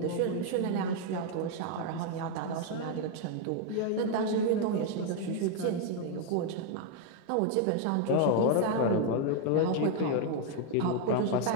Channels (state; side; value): different; both; correlation 0.00